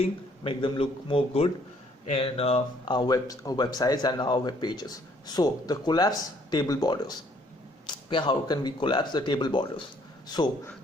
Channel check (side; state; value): both; normal; correlation 0.64